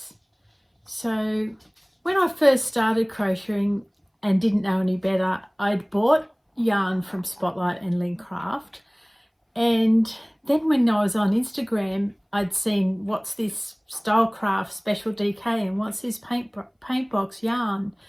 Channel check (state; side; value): identical; both; correlation 1.00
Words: So when I first started crocheting and didn't know any better, I'd bought yarn from Spotlight and LoveCrafts, and then when I was on Instagram, I'd seen what's this Stylecraft Special DK and what's this Paintbox yarn.